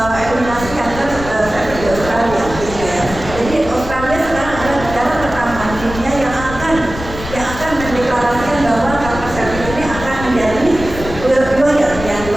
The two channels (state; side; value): noise; left; rumble, 10 dB below the sound